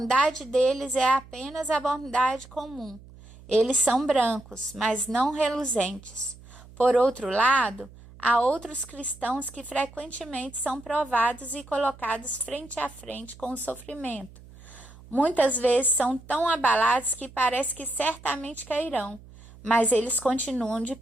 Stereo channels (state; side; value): noise; right; hum, 21 dB below the sound